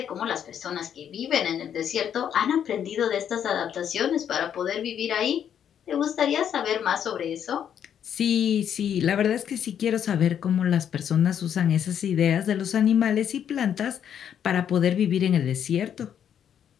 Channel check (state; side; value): quieter; right; 9.0 dB